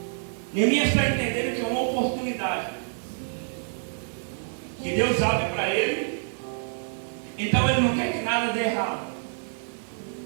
Neemias está entendendo que é uma oportunidade que Deus abre para ele. Então ele não quer que nada dê errado.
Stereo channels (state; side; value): silent; left; 60 dB below the other